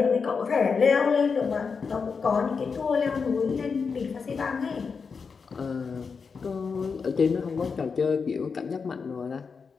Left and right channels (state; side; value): quieter; right; 5.4 dB